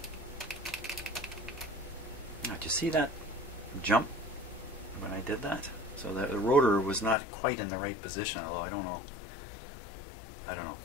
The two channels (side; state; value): right; drops out; at 7.2 s